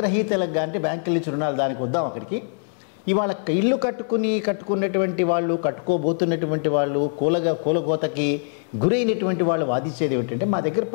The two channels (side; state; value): right; silent; 63 dB below the other